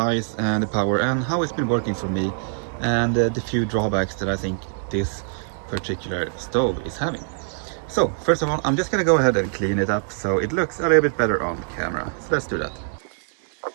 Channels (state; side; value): silent; left; digital silence